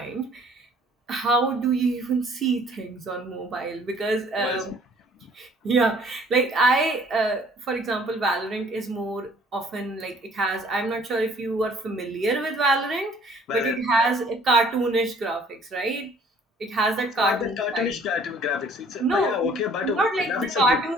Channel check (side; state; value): both; normal; correlation 0.57